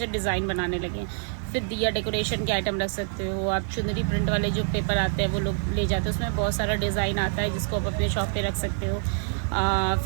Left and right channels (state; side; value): silent; left; 57 dB below the other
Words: डिज़ाइन बनाने लगे। फिर दिया डेकोरेशन के आइटम रख सकते हो आप। चुनरी प्रिंट वाले जो पेपर आते हैं वो लोग ले जाते हैं, उसमें बहुत सारा डिज़ाइन आता है जिसको आप अपने शॉप पे रख सकते हो।